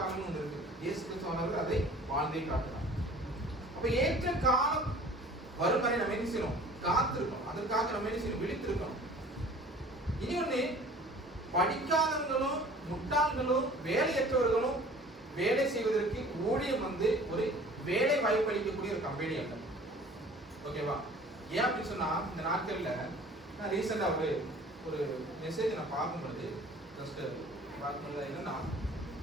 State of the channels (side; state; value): both; normal; correlation 0.47